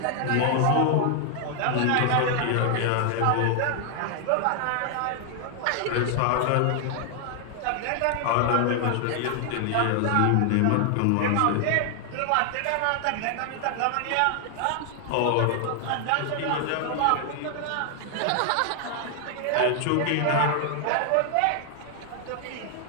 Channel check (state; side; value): different; both; correlation 0.00